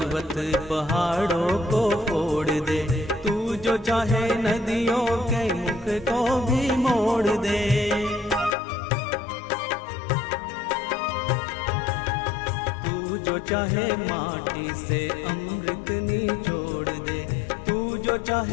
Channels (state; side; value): drops out; right; at 8.6 s